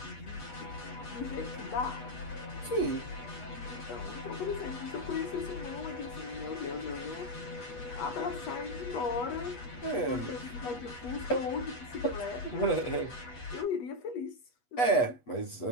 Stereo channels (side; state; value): right; late; 8.2 ms